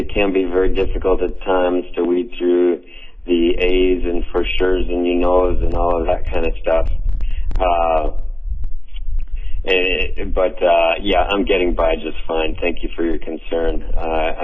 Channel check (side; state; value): right; late; 0.054 ms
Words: can be very difficult at times to weed through the A's and for sure's and you knows and all of that kind of stuff. Yeah, I'm getting by just fine. Thank you for your concern.